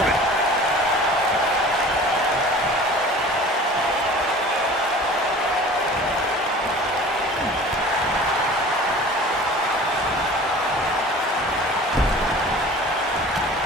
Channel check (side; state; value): both; normal; correlation 0.43